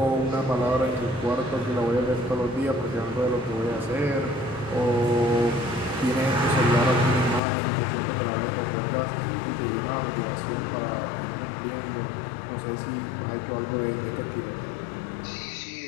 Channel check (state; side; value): drops out; right; at 7.4 s